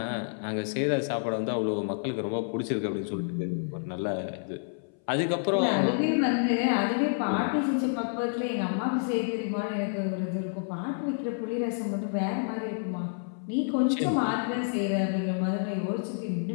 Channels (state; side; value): silent; right; 59 dB below the other